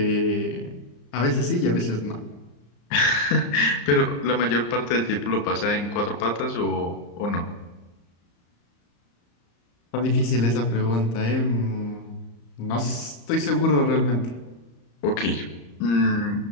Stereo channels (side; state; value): right; late; 34 ms